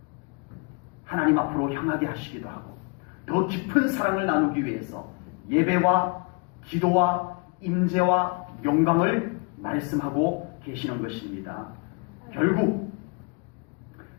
하나님 앞으로 향하게 하시기도 하고 더 깊은 사랑을 나누기 위해서 예배와 기도와 임재와 영광을 말씀하고 계시는 것입니다. 결국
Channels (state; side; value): quieter; right; 31.2 dB